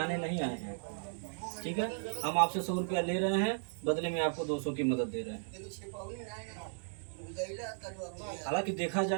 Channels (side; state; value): left; silent; digital silence